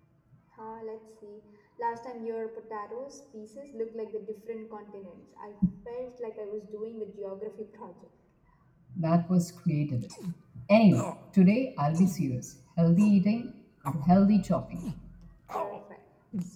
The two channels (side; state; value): both; identical; correlation 1.00